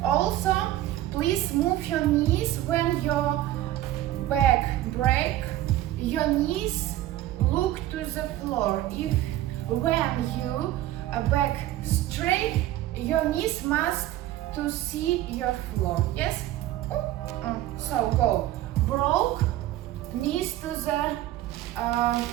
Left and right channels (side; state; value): left; quieter; 14.2 dB